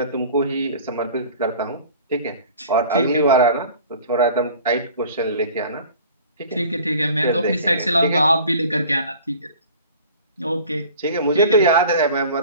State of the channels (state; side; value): inverted; both; correlation -0.45